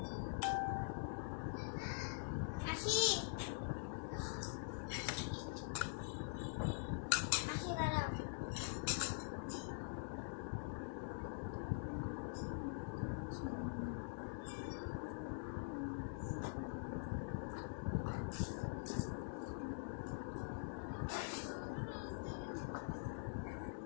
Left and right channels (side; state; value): right; silent; digital silence